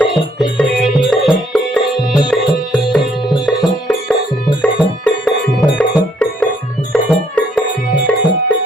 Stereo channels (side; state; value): both; normal; correlation 0.67